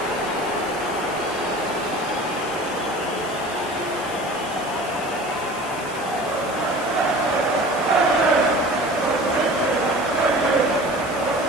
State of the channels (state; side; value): noise; left; hiss, 16 dB below the sound